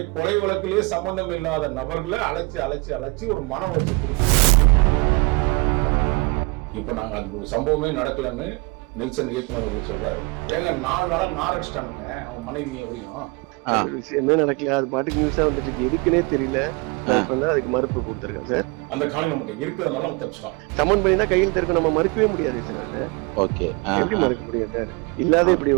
கொலை வழக்கிலே சம்பந்தம் இல்லாத நபர்களை அழைச்சி ஒரு மன உளைச்சல் கொடுத்தாங்க. இப்ப நாங்க அந்த சம்பவமே நடக்கலன்னு நெல்சன் இயக்குனர் அவர்கள் சொல்றாரு. ஏங்க 4 நாளா நார் அடிச்சிட்டானுங்க அவன் மனைவி எப்படியும் விஷயமே நடக்கல, அது பாட்டுக்கு நியூஸா வந்துட்டு இருக்கு, எதுக்குன்னே தெரியல. அதுக்கு மறுப்பு கொடுத்துருக்கேன் சார். அந்த காலம் நம்மகிட்ட இருக்கிறதுனால நம்ம தப்பிச்சிட்டோம். சமன் பண்ணினா கையில் இருக்க நம்ம மறுக்கவே முடியாது சார். ஓகே, எப்படி மறுக்க முடியும் சார்? இல்லாத இப்படி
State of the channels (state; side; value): quieter; left; 27.9 dB